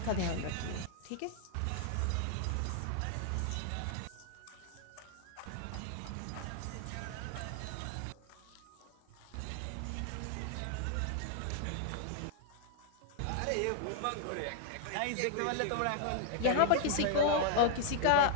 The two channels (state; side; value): different; both; correlation -0.01